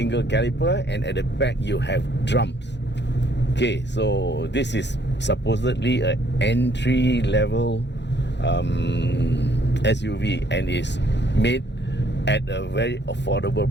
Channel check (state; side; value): late; right; 0.51 ms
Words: caliper, and at the back you have drums. Okay, so this is supposedly an entry-level SUV, and is made at a very affordable